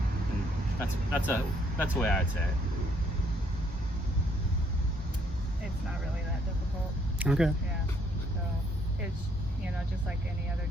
And that's the way I'd say it. It's not really that difficult. Okay. Yeah. So it's just like any other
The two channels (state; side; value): normal; both; correlation 0.68